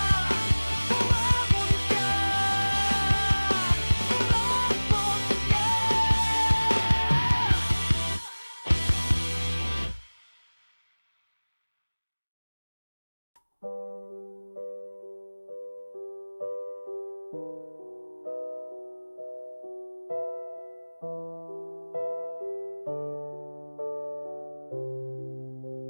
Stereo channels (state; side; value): inverted; both; correlation -1.00